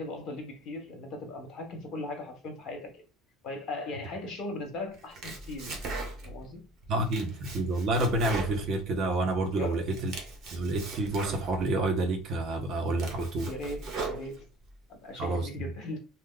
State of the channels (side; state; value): both; normal; correlation 0.47